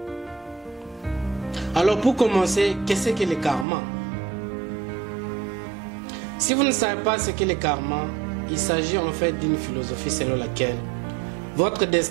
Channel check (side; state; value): left; drops out; at 3.7 s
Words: Alors pour commencer, qu'est-ce que le karma? Si vous ne savez pas ce qu'est le karma, il s'agit en fait d'une philosophie selon laquelle votre